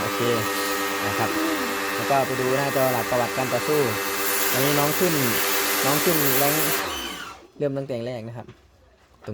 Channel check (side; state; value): both; identical; correlation 1.00